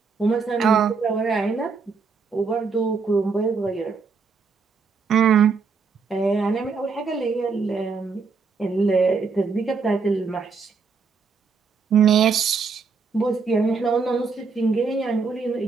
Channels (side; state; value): left; quieter; 4.9 dB